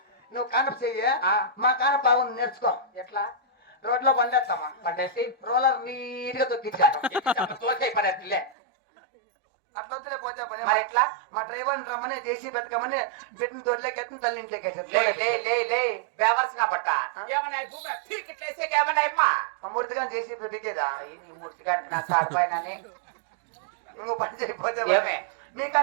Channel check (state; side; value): drops out; left; at 8.6 s